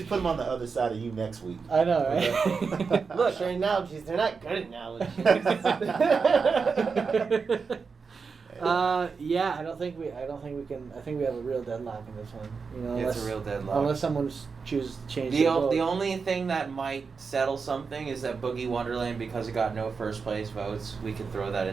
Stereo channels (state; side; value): quieter; left; 5.2 dB